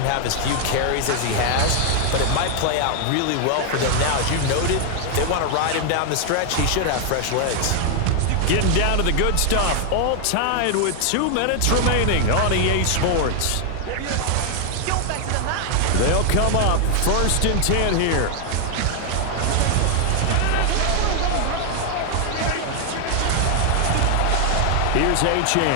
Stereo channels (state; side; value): different; both; correlation 0.00